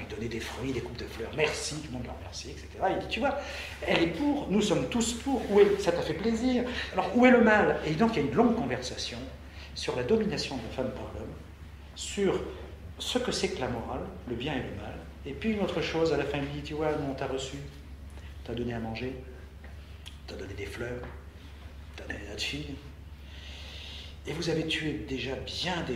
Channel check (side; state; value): both; identical; correlation 1.00